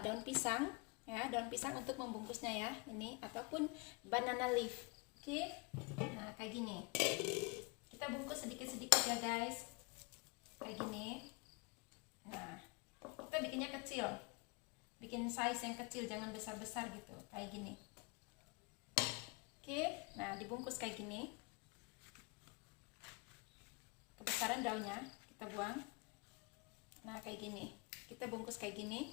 pisang ya, daun pisang untuk membungkusnya ya, ini ataupun banana leaf. Oke. Nah, kayak gini. Kita bungkus sedikit-sedikit ya guys. Kayak gini. Nah, kita bikinnya kecil. Bikin size yang kecil, jangan besar-besar gitu, kayak gini. Oke. Nah, dibungkus kayak gini. Kebesaran daunnya kita buang. Nah, kayak gini. Kita bungkus kayak gini.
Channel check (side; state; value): right; quieter; 29.3 dB